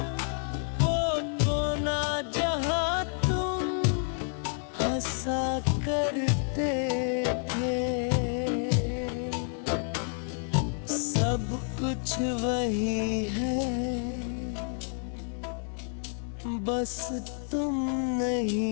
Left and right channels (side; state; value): right; silent; 58 dB below the other